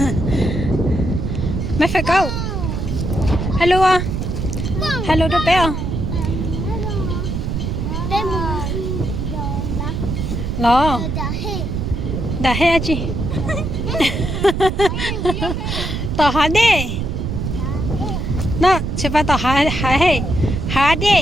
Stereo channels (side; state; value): right; noise; rumble, 2 dB below the sound